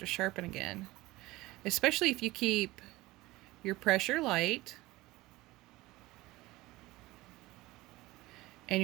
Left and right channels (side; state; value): left; quieter; 19.4 dB